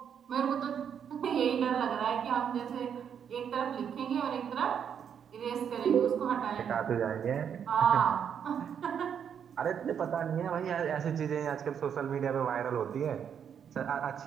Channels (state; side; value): quieter; left; 8.0 dB